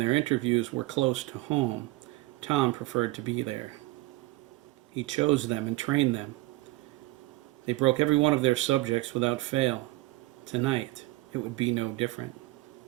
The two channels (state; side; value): quieter; left; 20.4 dB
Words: interviews were close to home, Tom preferred to be there. He chose them and trained them. They broke every one of their subjects without fail. Tonight, it would be no different.